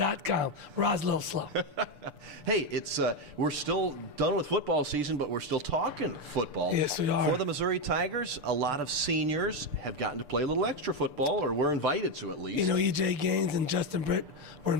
Rod's a little slow. Hey, we're still done with football season, but we're still talking football. Yes, we are. For the Missouri Tigers, a lot of seniors have gotten to play a little extra football, or were invited to at least. You know, E.J. Gaines and Justin Britt were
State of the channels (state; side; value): late; left; 6.8 ms